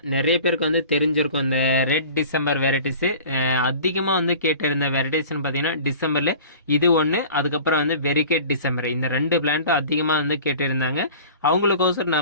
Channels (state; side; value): inverted; both; correlation -0.42